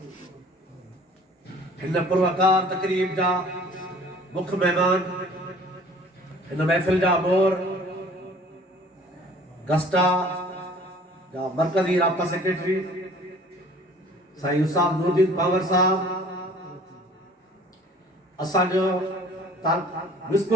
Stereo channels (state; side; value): normal; both; correlation 0.50